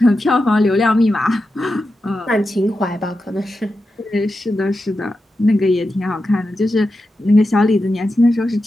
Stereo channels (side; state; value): both; normal; correlation 0.90